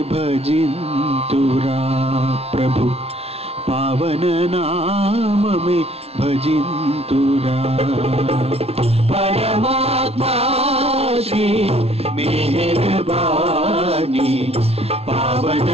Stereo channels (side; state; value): left; late; 0.30 ms